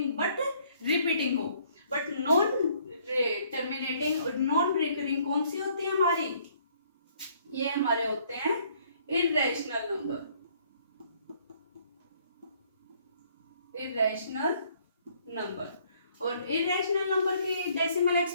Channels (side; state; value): both; inverted; correlation -0.63